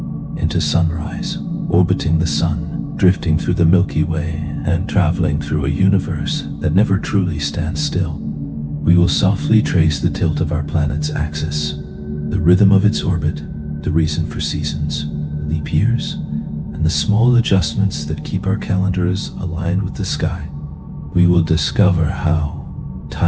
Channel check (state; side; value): identical; both; correlation 1.00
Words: into sunrise, orbiting the sun, drifting through the Milky Way, and traveling through a universe that never truly stands still. We will softly trace the tilt of our planet's axis, the rhythm of its orbit, the reason for seasons, leap years, and the small adjustments that keep our calendars aligned with the sky. We will discover how